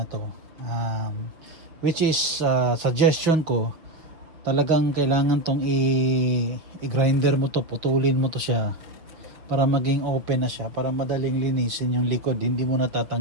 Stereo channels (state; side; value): late; left; 6.5 ms